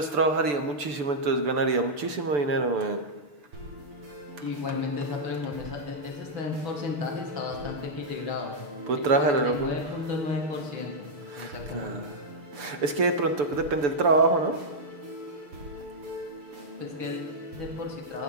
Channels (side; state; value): left; late; 6.9 ms